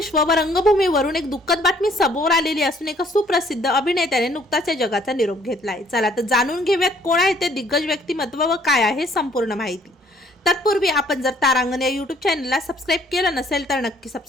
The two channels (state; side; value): normal; both; correlation 0.61